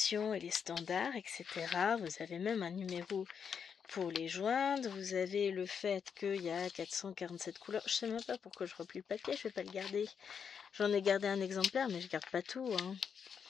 et les standards, etc. Vous avez même un numéro pour les joindre. Vous avez le fait qu'il y a 447 couleurs. Je sais même pas pourquoi je replie le papier, je vais pas le garder. J'en ai gardé un exemplaire, mais je garde pas tout. Hein.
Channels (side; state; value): right; quieter; 6.9 dB